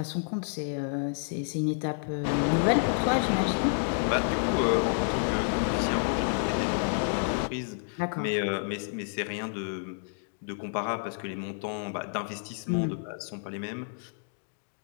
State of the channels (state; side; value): silent; right; digital silence